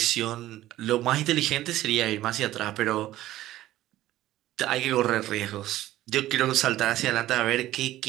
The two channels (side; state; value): left; quieter; 14.8 dB